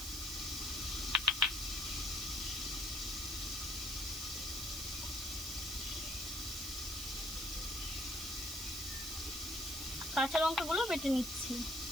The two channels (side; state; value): right; noise; hiss, 6 dB below the sound